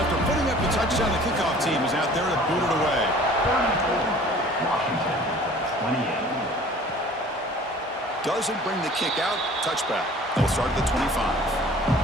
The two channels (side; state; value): both; normal; correlation 0.48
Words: putting up the touchdown, the kickoff team is out there to boot it away. Washington, 28. Doesn't bring the kick out. Touchback. They'll start at the 25.